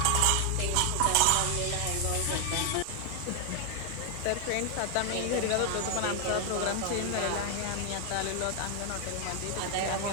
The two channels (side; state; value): both; different; correlation 0.00